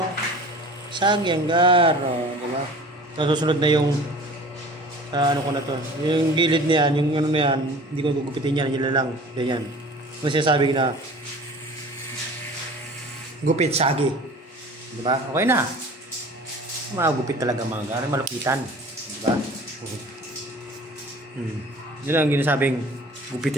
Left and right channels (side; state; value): both; normal; correlation 0.43